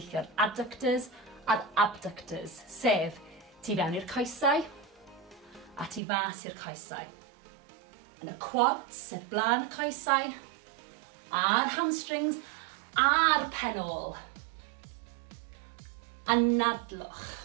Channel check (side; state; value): left; drops out; at 6.0 s